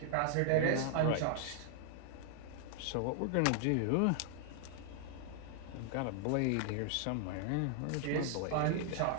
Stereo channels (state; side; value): different; both; correlation 0.00